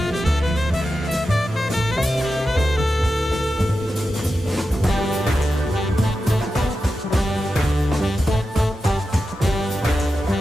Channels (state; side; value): normal; both; correlation 0.90